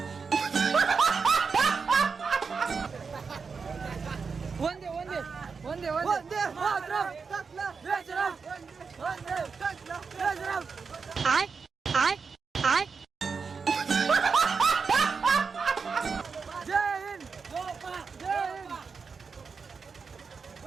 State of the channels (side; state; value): left; quieter; 5.2 dB